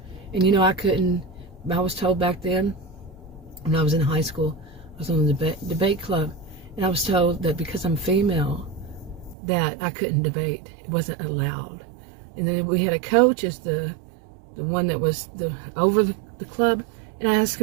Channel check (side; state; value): left; drops out; at 9.3 s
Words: and you know, I was told back then, when I was in high school, I was on the debate club, and I was told that because I'm female, that I couldn't debate. It wasn't allowed. And then we had a coach as the one that was over the club, and I asked